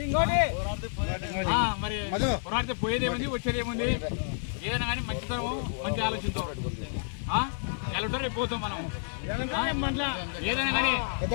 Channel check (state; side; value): silent; right; digital silence